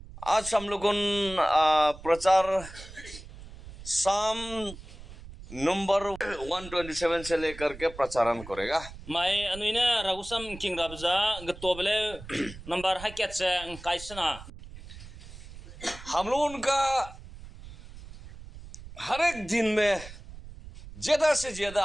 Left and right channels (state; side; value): noise; right; rumble, 15 dB below the sound